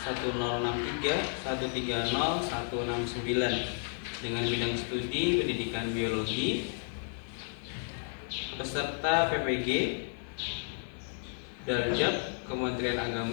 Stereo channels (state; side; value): silent; right; 56 dB below the other